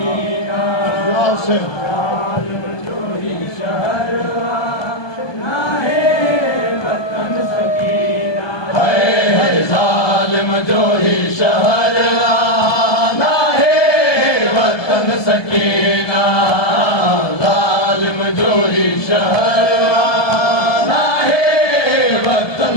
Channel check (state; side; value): late; right; 1.2 ms